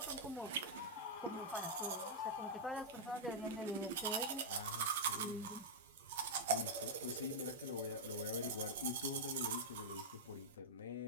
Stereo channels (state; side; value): normal; both; correlation -0.07